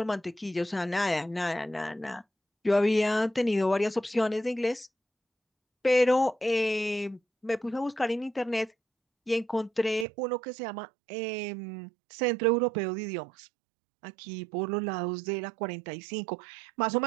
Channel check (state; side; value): drops out; left; at 10.1 s